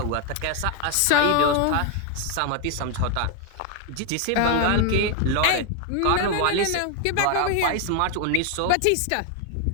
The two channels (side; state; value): both; different; correlation 0.01